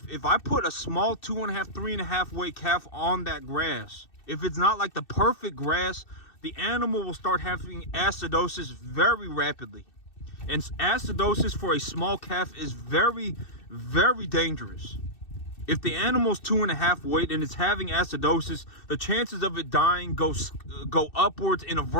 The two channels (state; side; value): late; right; 2.6 ms